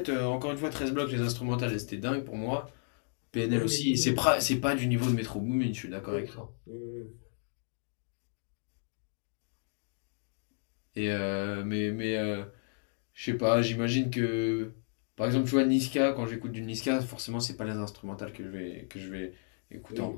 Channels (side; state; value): right; silent; digital silence